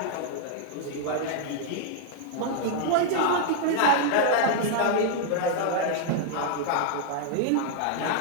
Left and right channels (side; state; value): both; different; correlation 0.00